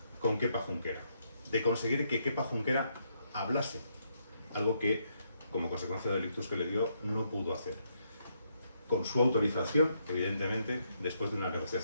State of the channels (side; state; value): both; inverted; correlation -0.76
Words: con Kepa Junquera, de conseguir que Kepa Junquera hablase, algo que, como consecuencia del ictus que le dio, no pudo hacer. Con su autorización, evidentemente, después de una